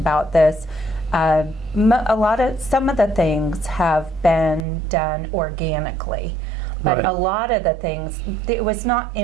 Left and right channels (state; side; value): drops out; left; at 4.7 s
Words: this. Some of the things have been done organically, but a lot of the things, it was not